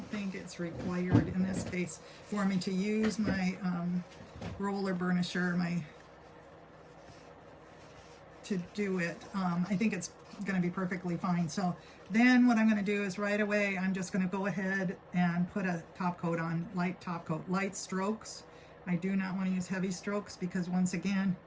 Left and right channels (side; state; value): both; identical; correlation 1.00